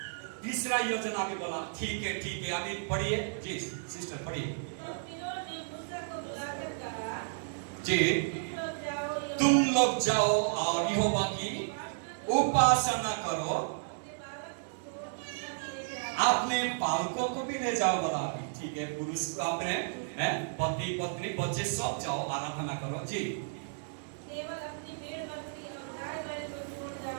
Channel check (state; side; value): silent; left; digital silence